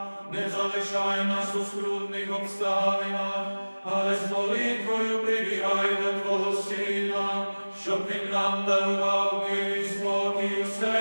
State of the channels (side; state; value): both; inverted; correlation -1.00